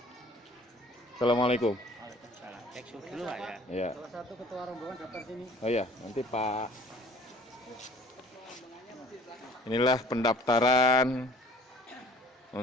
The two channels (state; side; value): normal; both; correlation 0.52